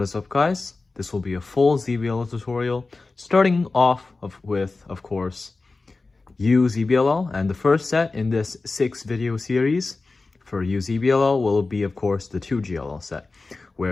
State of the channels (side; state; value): right; quieter; 3.7 dB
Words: is up, guys? This will be a full ZBLL tutorial, starting off with, of course, U-ZBLL, and the first set in this 6-video series for U-ZBLL will be, of course, the 2GLL set,